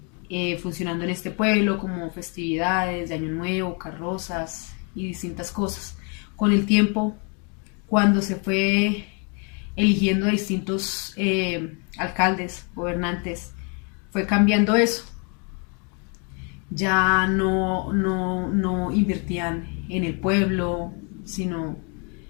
funcionando en este pueblo, como festividades de Año Nuevo, carrozas y distintas cosas. Con el tiempo, cuando se fue eligiendo a distintos alcaldes, gobernantes, fue cambiando eso. Ya no invertían en el pueblo, sino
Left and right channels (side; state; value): right; quieter; 36.2 dB